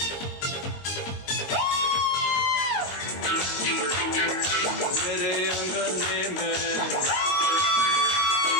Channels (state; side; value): late; right; 21 ms